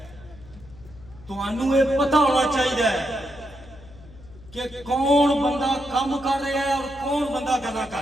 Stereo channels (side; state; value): left; noise; hum, 20 dB below the sound